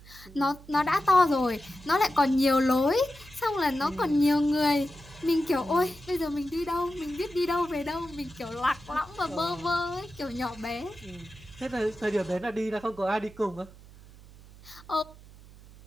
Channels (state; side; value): noise; right; hum, 21 dB below the sound